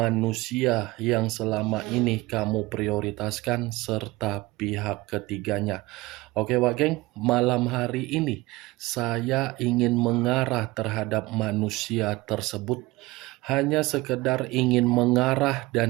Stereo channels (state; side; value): quieter; left; 20.7 dB